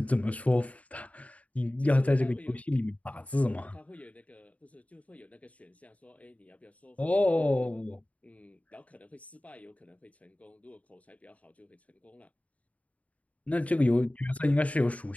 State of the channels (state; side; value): late; right; 0.068 ms